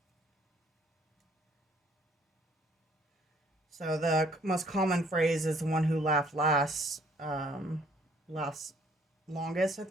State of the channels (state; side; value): normal; both; correlation 0.62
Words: So the most common phrase is the one who laughed last, lasts longest, I